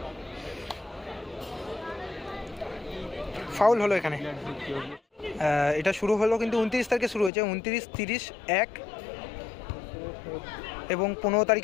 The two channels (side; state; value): right; drops out; at 7.3 s